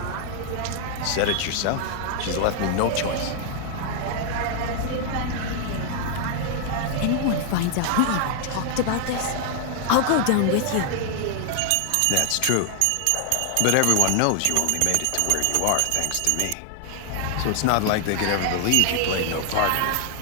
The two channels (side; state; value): both; different; correlation 0.00